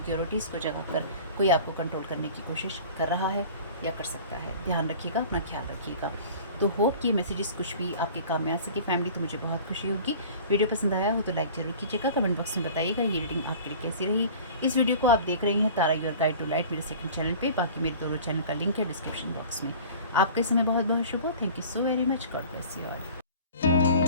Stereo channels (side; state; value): both; inverted; correlation -0.42